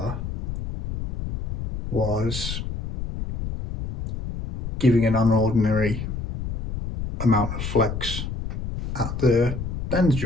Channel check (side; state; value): left; noise; rumble, 6 dB below the sound